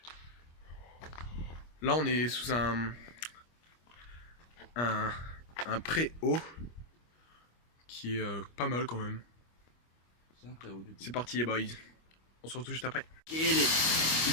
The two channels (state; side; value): late; right; 25 ms